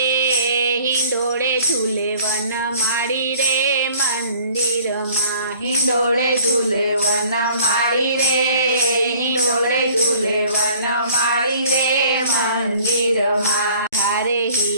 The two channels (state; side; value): inverted; both; correlation -0.53